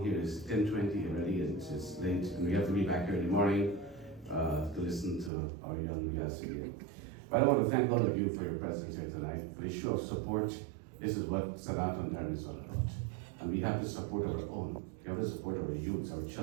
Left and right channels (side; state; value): left; drops out; at 5.3 s